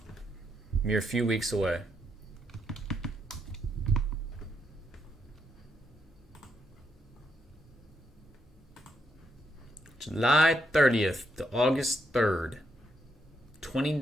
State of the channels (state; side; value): normal; both; correlation 0.79